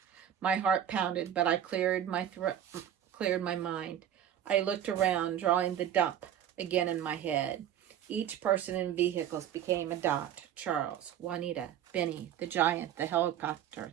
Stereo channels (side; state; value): left; quieter; 10.2 dB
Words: My heart pounded, but I cleared my mind. I looked around, drawing the dump again in my head. Each person in vehicles became a dot. Charles, Juanita, Benny, the giant, the helicopter,